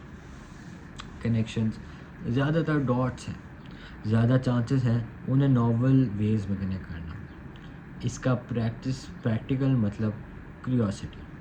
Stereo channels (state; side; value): identical; both; correlation 1.00